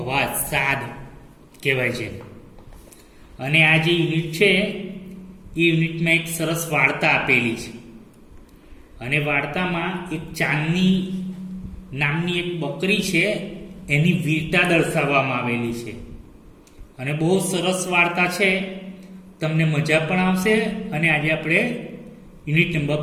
અવાજ, સાદ કહેવાય છે. અને આ જે યુનિટ છે એ યુનિટમાં એક સરસ વાર્તા આપેલી છે. અને વાર્તામાં એક ચાંદની નામની એક બકરી છે, એની વીરતા દર્શાવવામાં આવેલી છે. અને બહુ સરસ વાર્તા છે, તમને મજા પણ આવશે. અને આજે આપણે યુનિટ નંબર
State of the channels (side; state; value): both; identical; correlation 1.00